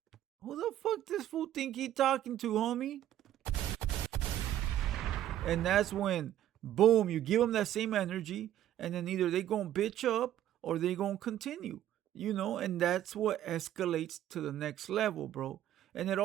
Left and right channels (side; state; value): left; quieter; 12.2 dB